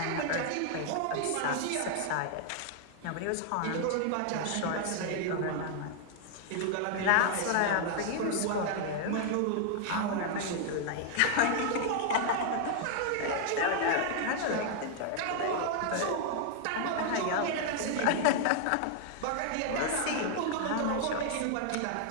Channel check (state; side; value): different; both; correlation 0.00